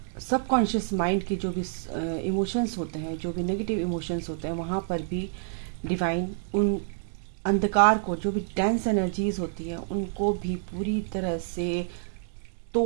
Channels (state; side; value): silent; left; digital silence